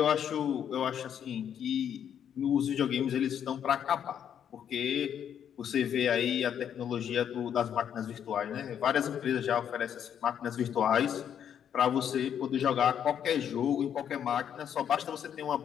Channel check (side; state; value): right; quieter; 8.9 dB